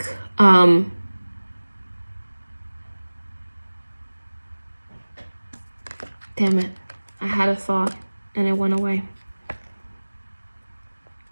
damn it, I had a thought and it went away.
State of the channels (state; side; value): inverted; both; correlation -1.00